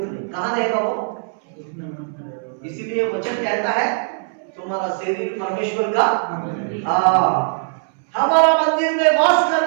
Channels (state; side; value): silent; left; 65 dB below the other